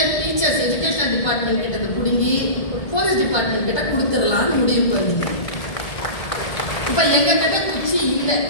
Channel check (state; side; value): late; right; 1.7 ms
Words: டீச்சர்ஸ் எஜுகேஷனல் டிபார்ட்மெண்ட் கிட்ட புடுங்கி போலீஸ் டிபார்ட்மெண்ட் கிட்ட கொடுத்துடலாம்னு முடிவு பண்ணீங்க. இப்ப எங்க கிட்ட குச்சி இல்லை,